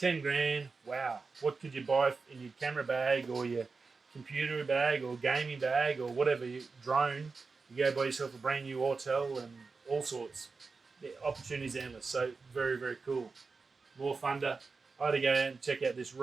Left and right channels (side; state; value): left; quieter; 4.4 dB